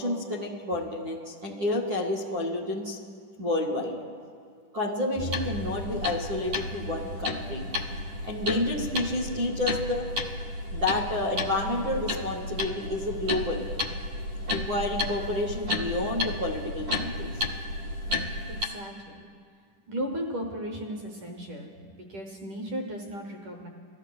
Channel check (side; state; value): left; late; 10 ms